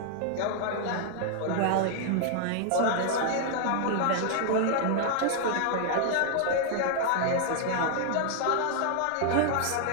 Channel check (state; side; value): different; both; correlation 0.00